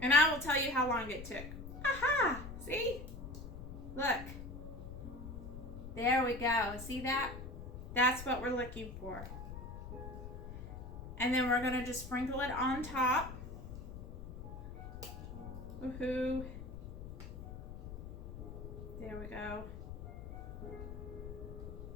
And I will tell you how long it took. Aha! See? Look. There we go. See that? That's what we're looking for. And then we're going to just sprinkle it on top. Woohoo. There we go.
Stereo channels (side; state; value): left; noise; rumble, 10 dB below the sound